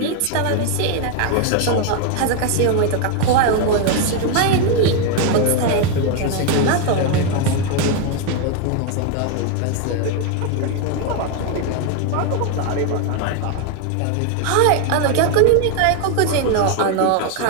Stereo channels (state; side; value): different; both; correlation 0.01